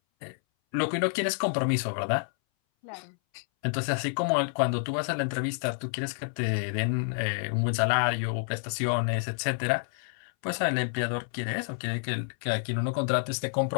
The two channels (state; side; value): silent; right; 59 dB below the other